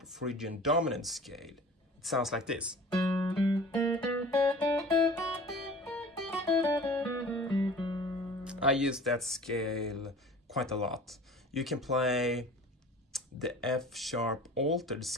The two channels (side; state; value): both; normal; correlation 0.43